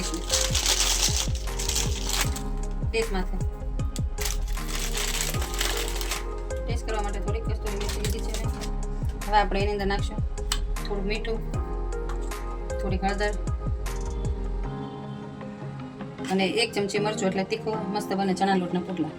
ટેસ્ટ માટે. ટેસ્ટ કરવા માટે થોડીક કસ્તુરી મેથી લીધી છે. હવે આપણે એની અંદર નાખશું થોડું મીઠું, થોડીક હળદર અને 1 ચમચી મરચું, એટલે તીખો મસ્ત બને ચણા લોટના પુડલા.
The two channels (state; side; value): identical; both; correlation 1.00